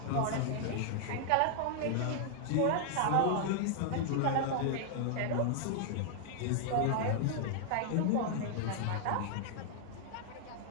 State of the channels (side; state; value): both; different; correlation -0.01